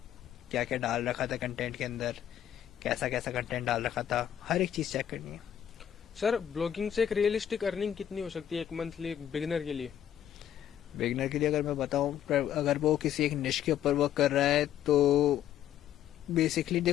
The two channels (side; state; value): right; quieter; 10.5 dB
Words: क्या क्या डाल रखा था कंटेंट के अंदर, कैसा कैसा कंटेंट डाल रखा था, हर एक चीज चेक करनी है। सर ब्लॉगिंग से एक रियलिस्टिक अर्निंग कितनी हो सकती है एक मंथली बिगिनर के लिए? बिगनर के लिए अगर मैं बताऊं, अगर वो किसी एक निश के ऊपर वर्क कर रहा है तो बेसिकली